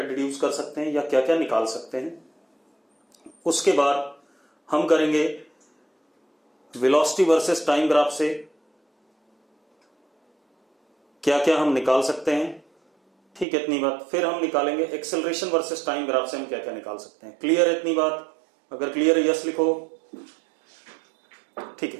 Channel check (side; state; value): left; drops out; at 13.5 s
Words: डिड्यूस कर सकते हैं या क्या क्या निकाल सकते हैं। उसके बाद हम करेंगे वेलोसिटी वर्सेस टाइम ग्राफ से क्या क्या हम निकाल सकते हैं। ठीक है, इतनी बात। फिर हम निकालेंगे एक्सेलरेशन वर्सेस टाइम ग्राफ से हम क्या क्या निकाल सकते हैं। क्लियर है इतनी बात? अगर क्लियर है यस लिखो। ठीक